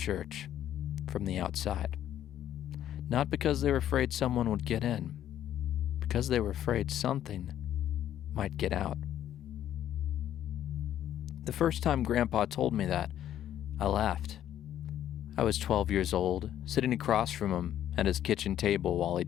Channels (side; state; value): right; quieter; 11.3 dB